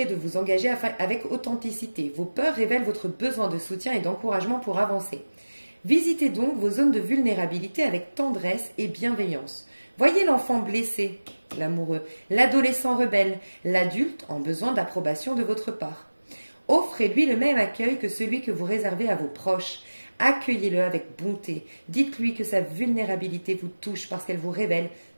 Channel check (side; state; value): both; inverted; correlation -1.00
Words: de vous engager avec authenticité. Vos peurs révèlent votre besoin de soutien et d'encouragement pour avancer. Visitez donc vos zones de vulnérabilité avec tendresse et bienveillance. Voyez l'enfant blessé, l'amoureux, l'adolescent rebelle, l'adulte en besoin d'approbation de votre part. Offrez-lui le même accueil que celui que vous réservez à vos proches. Accueillez-le avec bonté. Dites-lui que sa vulnérabilité vous touche parce qu'elle vous révèle